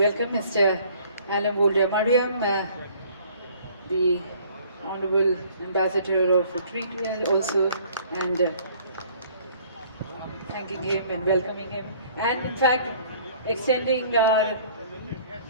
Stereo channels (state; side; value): inverted; both; correlation -0.56